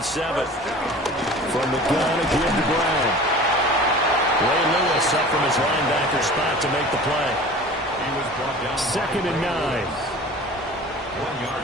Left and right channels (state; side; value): normal; both; correlation 0.41